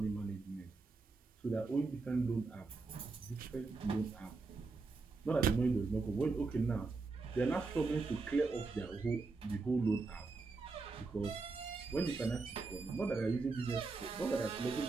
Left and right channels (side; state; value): left; quieter; 3.9 dB